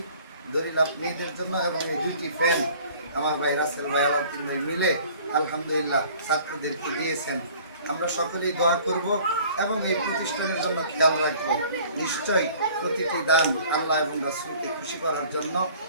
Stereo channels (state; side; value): inverted; both; correlation -0.51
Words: লাভ মেয়েদের জন্য এবং এই দুইটি ফ্যান আমার ভাই রাসেল ভাই আলাউদ্দিন ভাই মিলে আলহামদুলিল্লাহ ছাত্রদেরকে দিয়েছেন। আমরা সকলেই দোয়া করব এবং এই প্রতিষ্ঠানের জন্য খেয়াল রাখবো। নিশ্চয়ই প্রতিটি দান আল্লাহ এবং রাসূলকে খুশি করার জন্য,